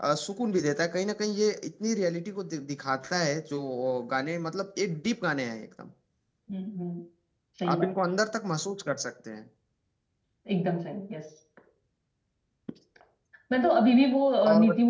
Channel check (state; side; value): identical; both; correlation 1.00